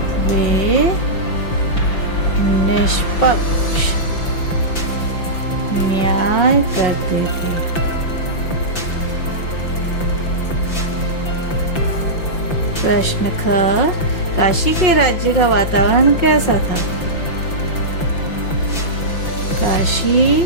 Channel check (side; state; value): right; late; 5.9 ms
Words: वे निष्पक्ष न्याय करते थे। प्रश्न ख, काशी के राज्य का वातावरण कैसा था?